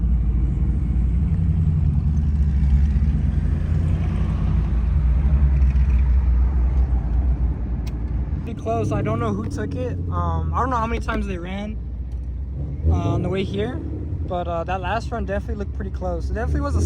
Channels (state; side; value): identical; both; correlation 1.00